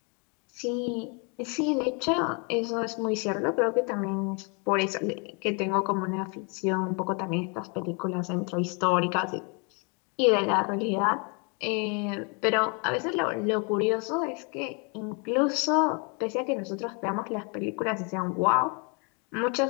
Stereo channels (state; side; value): quieter; right; 35.0 dB